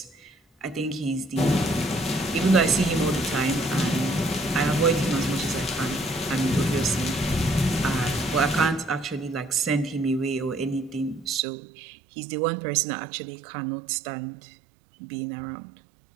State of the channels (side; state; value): left; drops out; at 11.5 s